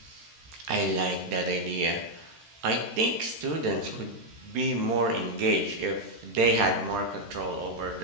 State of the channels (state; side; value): late; left; 13 ms